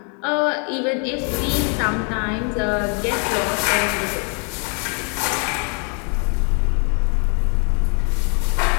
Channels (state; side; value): quieter; right; 37.7 dB